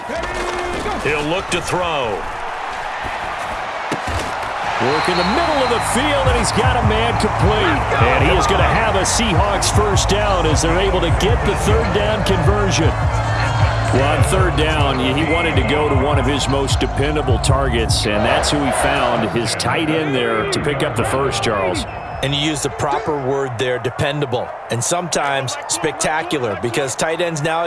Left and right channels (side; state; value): both; identical; correlation 1.00